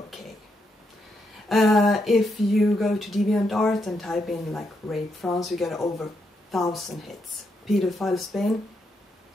If you go to DeviantArt and type in like Rape France, you get over 1,000 hits. Pedophile Spain,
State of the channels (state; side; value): normal; both; correlation 0.80